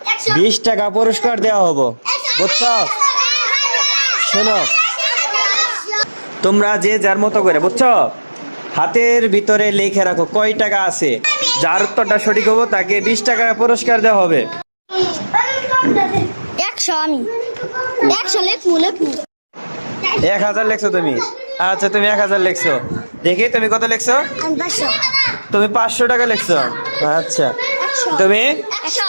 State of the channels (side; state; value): both; inverted; correlation -1.00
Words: 20 টাকা পুরস্কার দেওয়া হবো বুঝছো। শোনো, তোমরা যে যার মতো করে বুঝছো হাতের ভিতরে লিখে রাখো কয় টাকা আছে। যার উত্তরটা সঠিক হবো তাকে 20 টাকা পুরস্কার দেওয়া হবে। 100 আমি 100 লেখমু 1000 লেখছো তুমি? আচ্ছা তুমি 1000 লেখছো। দেখি তুমি কত লেখছো? আমি 500 তুমি 500 টাকা লেখছো। আচ্ছা 100 তুমি 100